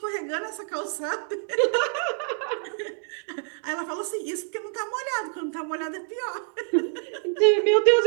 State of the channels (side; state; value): left; silent; digital silence